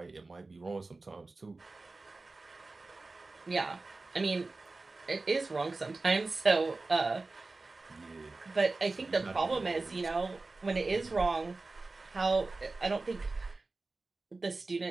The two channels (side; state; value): left; quieter; 3.5 dB